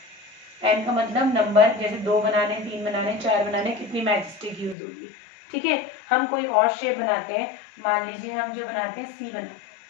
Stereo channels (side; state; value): right; drops out; at 4.8 s